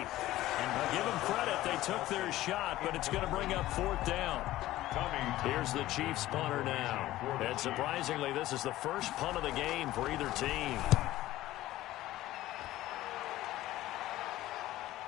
And give them credit. They took their shot, but it's going to bring up 4th down. Here's the Chiefs punter now. And surprisingly, this is the first punt of the game for either team.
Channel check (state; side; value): quieter; right; 15.6 dB